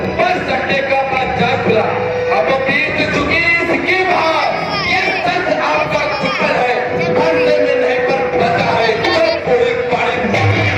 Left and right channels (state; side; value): identical; both; correlation 1.00